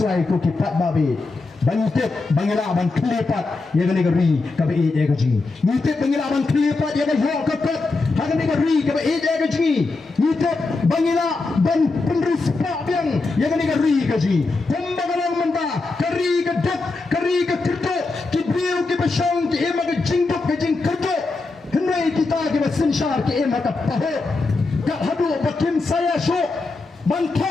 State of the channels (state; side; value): quieter; right; 3.6 dB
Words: ko ki padba be. Bangitip bangila bang klipat ya ga negeri ka ba ya ga jingi nitip bangila bang klipat ya ga yo ka kat ha ga negeri ka ba ya ga jingi nitip bangila bang penrispa biang ya ga negeri ka jingi pembagalang menta kari ka dak kari ka kerto ki biu ki basang ki ema ga jingdok ka jing kerto hendai kita ki basinshar ki ema ka paho ka hadu bakim saya sho